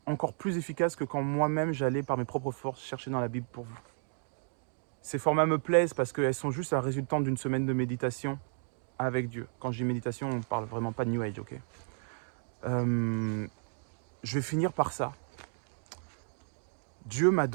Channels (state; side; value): silent; left; 56 dB below the other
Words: encore plus efficaces que quand moi-même j'allais par mes propres forces chercher dans la Bible pour vous. Ces formats me plaisent parce qu'elles sont juste la résultante d'une semaine de méditation avec Dieu. Quand je dis méditation, on ne parle vraiment pas de New Age, ok? Je vais finir par ça. Dieu m'a